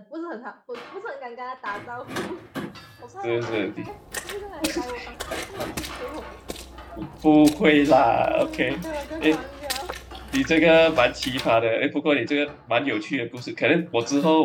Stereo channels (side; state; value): both; identical; correlation 1.00